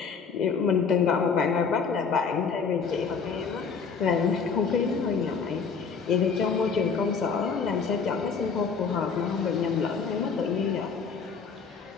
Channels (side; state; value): right; quieter; 5.7 dB